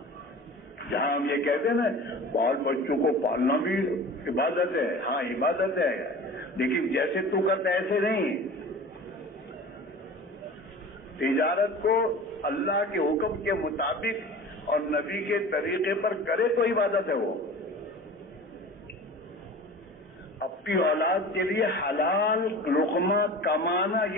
جہاں ہم یہ کہتے ہیں نا بال بچوں کو پالنا بھی عبادت ہے. ہاں عبادت ہے، لیکن جیسے تو کرتا ہے ایسے نہیں. تجارت کو اللہ کے حکم کے مطابق اور نبی کے طریقے پر کرے تو عبادت ہے. وہ اپنی اولاد کے لیے حلال لقمہ کمانا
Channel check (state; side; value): normal; both; correlation 0.38